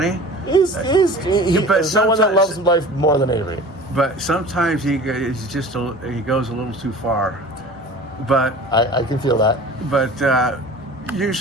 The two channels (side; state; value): both; normal; correlation 0.40